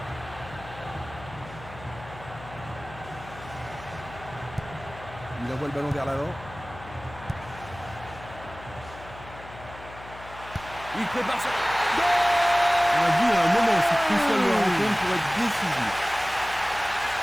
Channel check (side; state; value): left; noise; hum, 16 dB below the sound